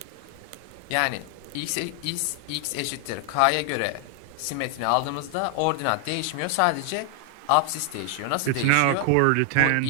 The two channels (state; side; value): different; both; correlation 0.00